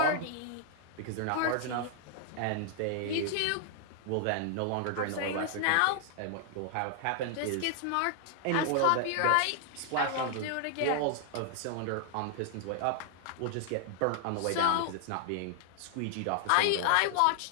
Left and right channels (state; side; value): different; both; correlation 0.00